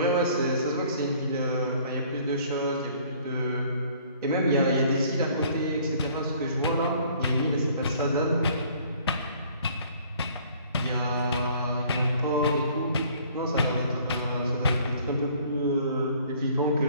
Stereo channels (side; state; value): both; inverted; correlation -0.56